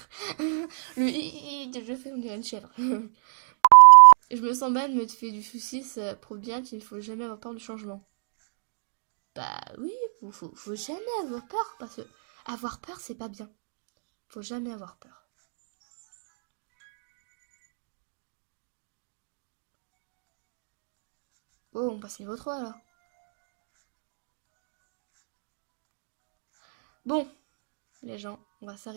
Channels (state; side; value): silent; left; digital silence